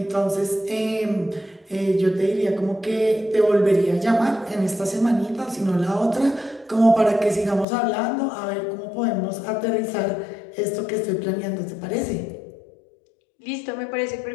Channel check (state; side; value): drops out; right; at 7.7 s